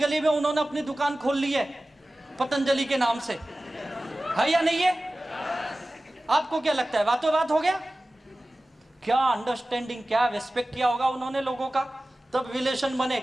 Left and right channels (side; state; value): both; normal; correlation 0.97